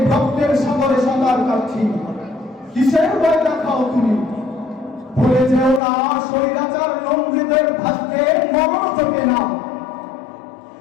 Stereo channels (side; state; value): right; drops out; at 5.8 s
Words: রক্তের সাগরে সাঁতার কাটছি। কিসের ভয় দেখাও তুমি? ভুলে যেও না স্বৈরাচার লঙ্ঘিতের ভাগ্যে মরণ চোখে না।